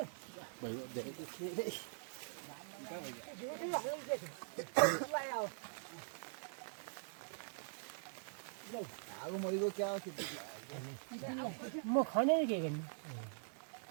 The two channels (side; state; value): left; silent; digital silence